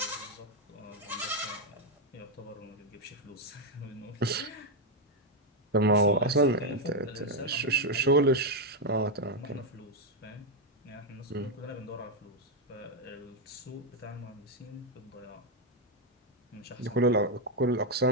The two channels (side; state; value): both; normal; correlation 0.03